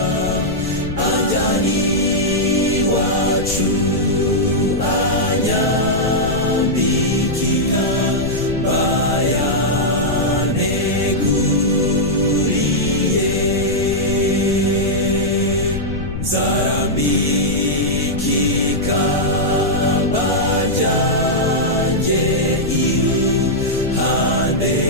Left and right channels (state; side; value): noise; left; rumble, 7 dB below the sound